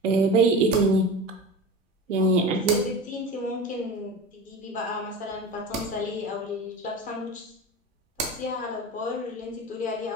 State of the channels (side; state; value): both; normal; correlation 0.30